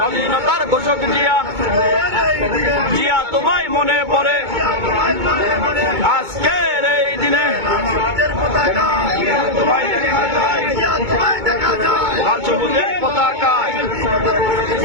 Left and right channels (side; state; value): left; late; 2.2 ms